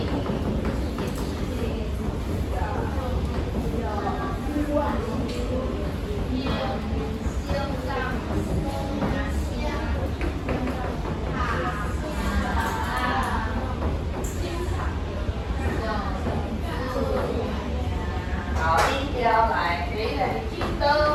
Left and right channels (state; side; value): identical; both; correlation 1.00